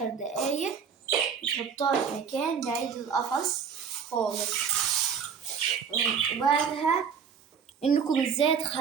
دقايق تحطوها في مكان بعيد القفص خالص. وبعدها إنكم ازاي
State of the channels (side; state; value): left; quieter; 6.7 dB